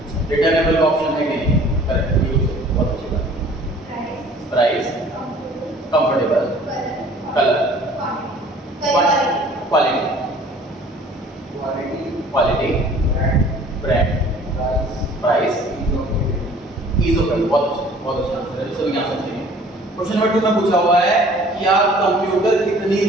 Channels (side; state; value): both; normal; correlation 0.51